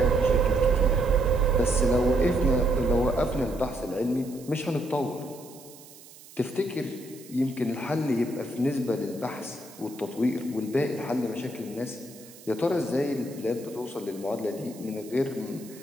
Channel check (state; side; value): noise; right; hiss, 20 dB below the sound